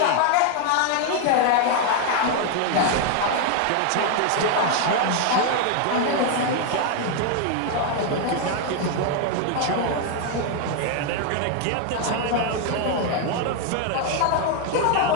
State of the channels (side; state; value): both; different; correlation 0.01